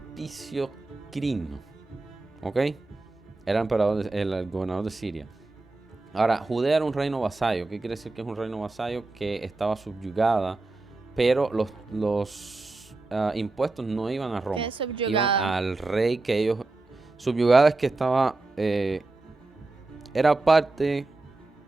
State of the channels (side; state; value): left; quieter; 3.2 dB